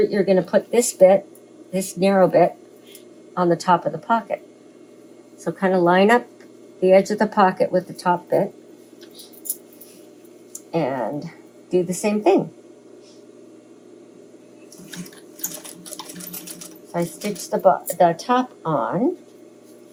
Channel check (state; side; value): identical; both; correlation 1.00